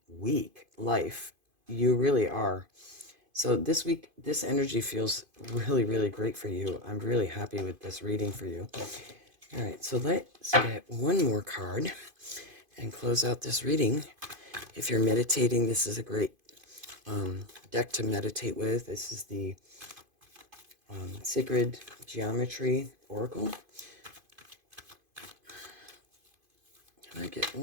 week life. You really are. So this week, this energy feels really, really great for you. I'm really happy with this reading for you. All right, so let's get one more card and close out this reading. If you're meditating, this is a great deck to meditate with. This is the Sacred Geometry Oracle. Can I get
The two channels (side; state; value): left; late; 2.5 ms